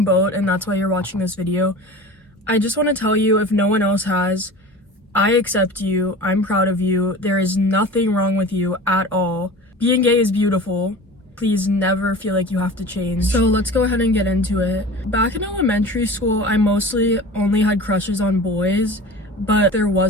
boat and that's why you're watching this video, I just want to tell you, if no one else has, I accept you, I'm proud of you, there is nothing wrong with you at all. Being gay is beautiful. Please never feel like you have to change. So let's go ahead and get into it. Back in elementary school, I mostly only had crushes on boys, but there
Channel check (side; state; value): both; normal; correlation 0.37